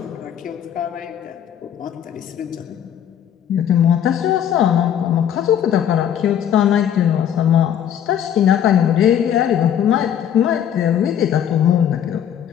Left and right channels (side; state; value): right; quieter; 9.5 dB